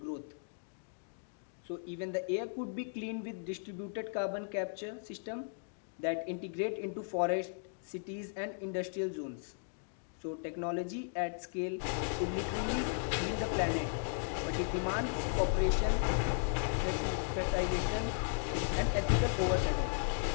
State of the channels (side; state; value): right; silent; digital silence